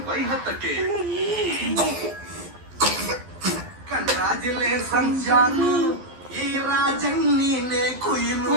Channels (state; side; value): late; left; 12 ms